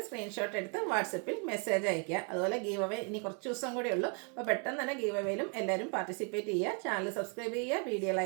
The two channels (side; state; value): left; quieter; 38.7 dB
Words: സ്ക്രീൻഷോട്ട് എടുത്ത് വാട്സപ്പിൽ മെസ്സേജ് അയയ്ക്കുക. അതുപോലെ ഗീവ് അവേ ഇനി കുറച്ച് ദിവസം കൂടെ ഉള്ളൂ. അപ്പോൾ പെട്ടെന്ന് തന്നെ ഗീവ് അവേയിലും എല്ലാവരും പാർട്ടിസിപ്പേറ്റ് ചെയ്യുക. ചാനൽ സബ്സ്ക്രൈബ് ചെയ്യുക, വീഡിയോ